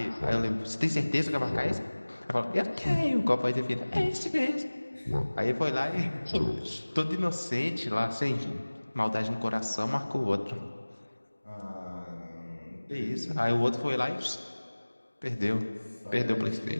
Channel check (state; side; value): inverted; both; correlation -1.00